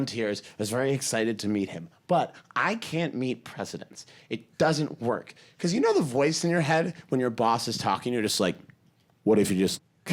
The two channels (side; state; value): both; identical; correlation 1.00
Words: I was very excited to meet him. But I can't meet presidents. It doesn't work. Because you know the voice in your head when your boss is talking, you're just like, what if you just